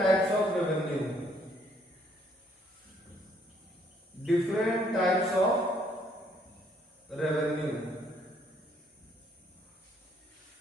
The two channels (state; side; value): normal; both; correlation 0.66